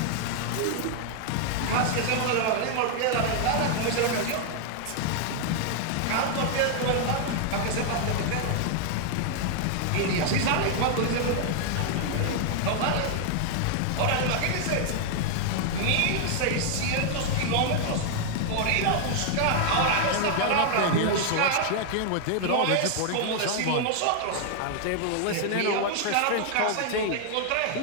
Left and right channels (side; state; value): both; different; correlation 0.00